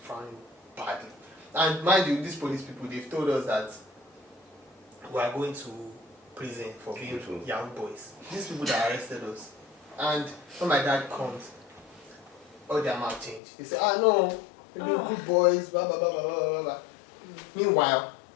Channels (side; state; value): right; drops out; at 13.4 s